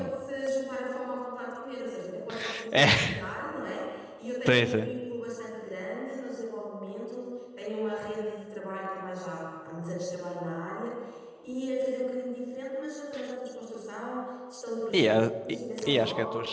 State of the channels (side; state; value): both; identical; correlation 1.00